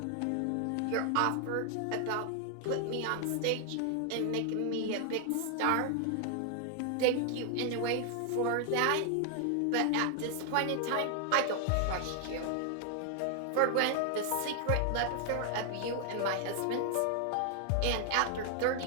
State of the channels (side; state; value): both; different; correlation 0.00